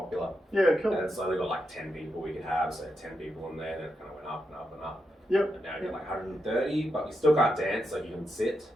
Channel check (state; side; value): normal; both; correlation 0.85